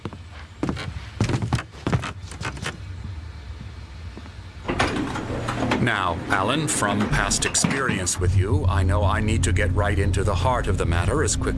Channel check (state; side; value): identical; both; correlation 1.00